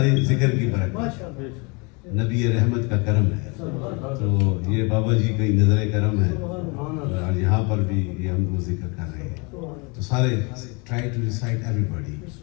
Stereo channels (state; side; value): quieter; right; 30.4 dB